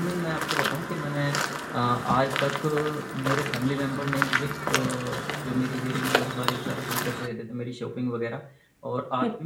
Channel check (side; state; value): both; identical; correlation 1.00